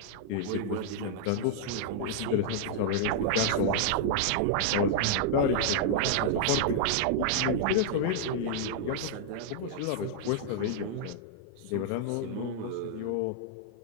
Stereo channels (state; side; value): different; both; correlation -0.01